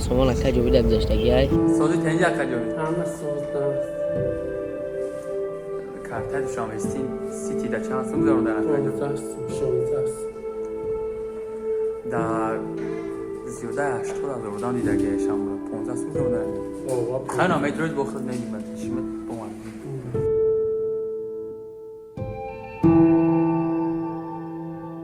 اکا جوبی در گذشتگی های سازی تنجی اکا جوبی همه سوزدم کارت دوشنبه سیتی در چند سوم گذارم در اکا جوبی 16 در زیاده 80 هزار بودم دیده که شما 15 سوم گذارم در خیلی نامه دروش بخورد نمیمد شیمت بومن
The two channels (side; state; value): both; identical; correlation 1.00